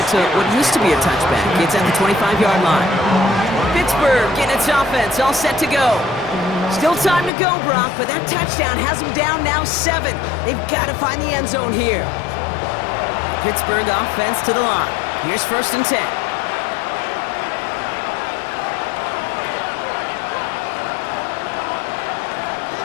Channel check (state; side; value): drops out; right; at 7.3 s